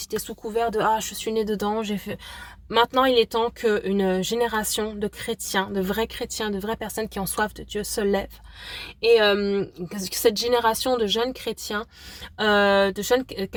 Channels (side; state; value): both; identical; correlation 1.00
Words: sous couvert de je suis né dedans, j'ai fait. Maintenant, il est temps qu'une génération de chrétiens, de vraies personnes qui ont soif de Dieu se lève. Et que cette génération de jeunes chrétiens, de jeunes